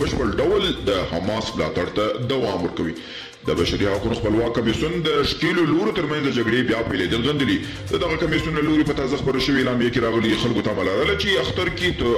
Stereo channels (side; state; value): both; identical; correlation 1.00